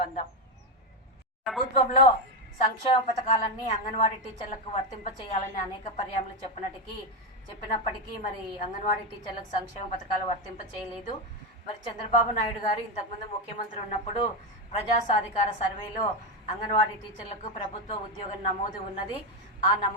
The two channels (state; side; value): normal; both; correlation 0.10